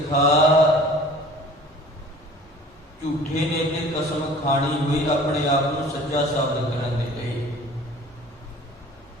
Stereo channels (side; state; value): both; normal; correlation 0.46